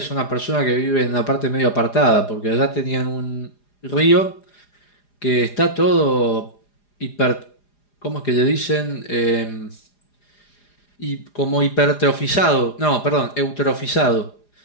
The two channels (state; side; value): late; right; 4.9 ms